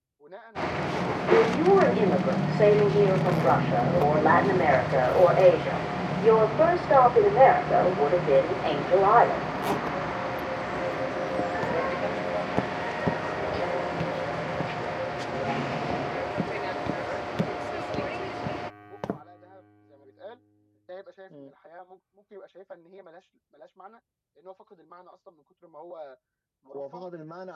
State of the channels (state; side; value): identical; both; correlation 1.00